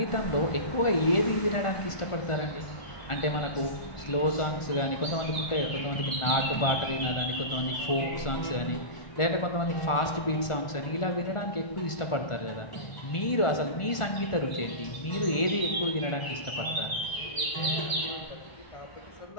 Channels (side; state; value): right; late; 1.4 ms